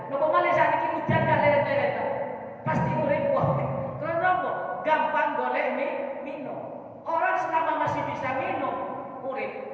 Nopo malih sakniki hujan gak leret-leret. Pasti urip wong. Karena nopo? Gampang golek minum. Orang selama masih bisa minum urip.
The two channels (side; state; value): both; identical; correlation 1.00